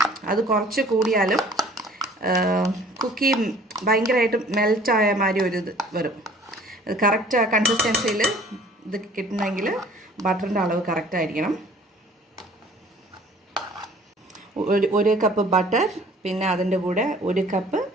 അത് കുറച്ച് കൂടിയാലും കുക്കി ഭയങ്കരമായിട്ട് മെൽറ്റായ മാതിരി ഒരു ഇത് വരും. ഇത് കറക്റ്റ് കൺസിസ്റ്റൻസിയിൽ ഇത് കിട്ടണമെങ്കിൽ ബട്ടറിൻ്റെ അളവ് കറക്റ്റായിരിക്കണം. 1 കപ്പ് ബട്ടർ, പിന്നെ അതിൻ്റെ കൂടെ 1 കപ്പ്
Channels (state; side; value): normal; both; correlation 0.52